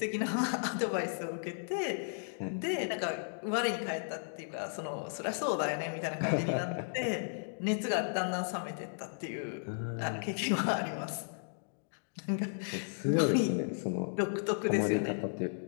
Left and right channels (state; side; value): silent; right; digital silence